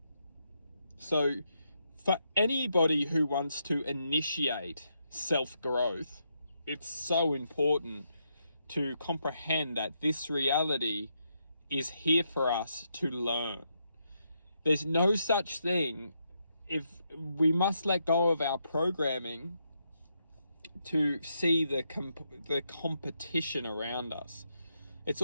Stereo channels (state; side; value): inverted; both; correlation -0.80